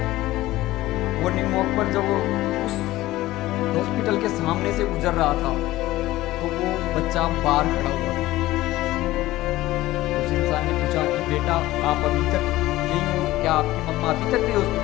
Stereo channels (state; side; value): quieter; right; 16.9 dB